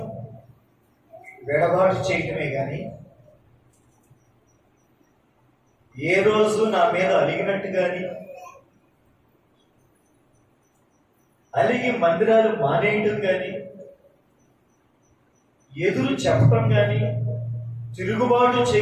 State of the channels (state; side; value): identical; both; correlation 1.00